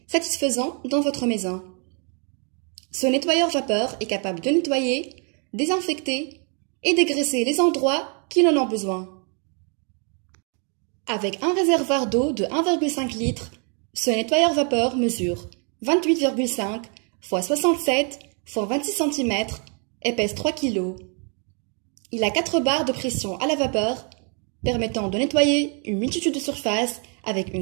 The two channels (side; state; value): left; quieter; 38.8 dB